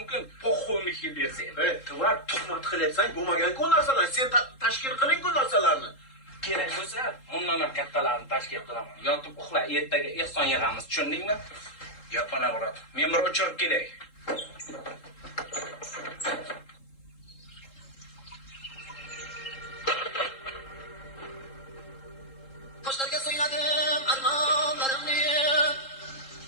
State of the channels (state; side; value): late; right; 3.7 ms